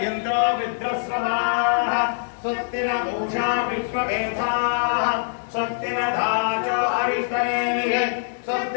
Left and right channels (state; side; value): silent; right; 63 dB below the other